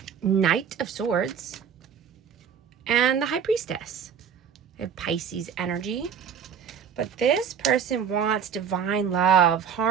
Knight of Swords, and the High Priestess. I have Pisces energy, but this person wants divine love,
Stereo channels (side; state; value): left; quieter; 7.4 dB